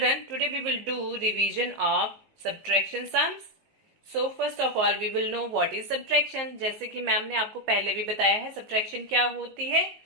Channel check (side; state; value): left; late; 19 ms